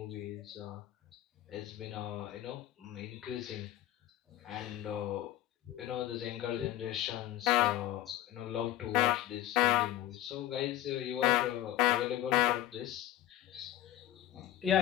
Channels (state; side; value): quieter; right; 13.6 dB